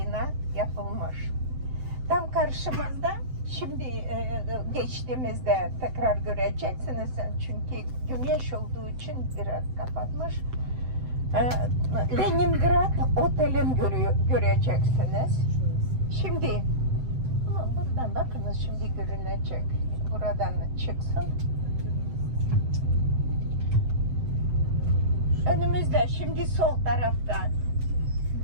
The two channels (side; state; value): left; late; 7.8 ms